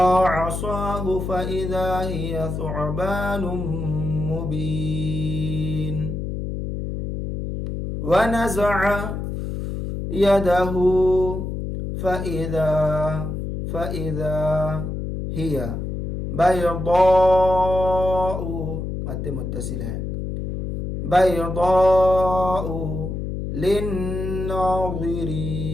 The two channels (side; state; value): left; noise; hum, 4 dB below the sound